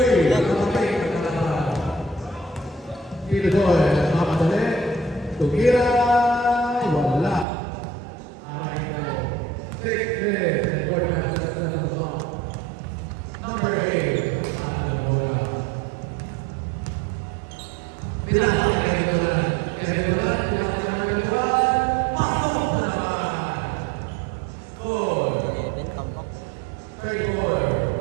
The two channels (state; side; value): drops out; left; at 7.5 s